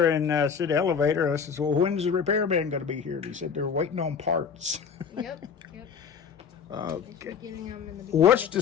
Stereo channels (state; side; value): quieter; right; 6.7 dB